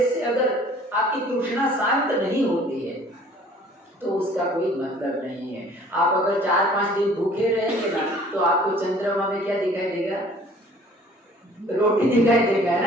से अगर आपकी तृष्णा शांत नहीं होती है तो उसका कोई मतलब नहीं है। आप अगर 4-5 दिन भूखे रहेंगे ना, तो आपको चंद्रमा में क्या दिखाई देगा? रोटी दिखाई देगा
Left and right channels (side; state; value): both; normal; correlation 0.52